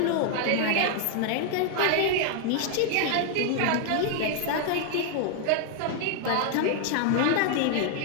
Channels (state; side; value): different; both; correlation 0.00